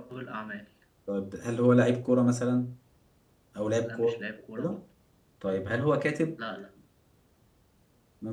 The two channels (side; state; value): both; identical; correlation 1.00